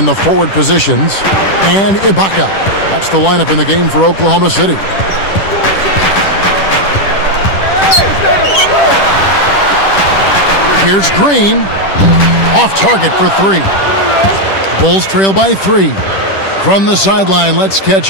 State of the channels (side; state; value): right; late; 10 ms